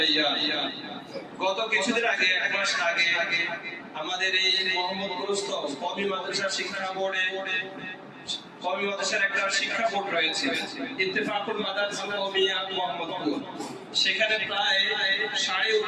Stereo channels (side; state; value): both; identical; correlation 1.00